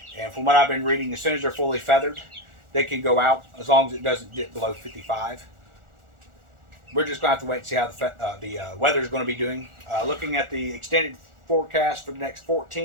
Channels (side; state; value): left; late; 1.4 ms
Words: And from what I've been reading, as soon as they're fully feathered, they can go out as long as it doesn't dip below 55. We're just going to have to wait and see how the weather is going to be doing. Looking at the extended forecast for the next